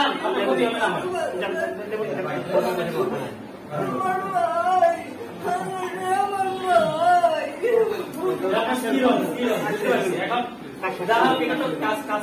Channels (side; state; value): both; identical; correlation 1.00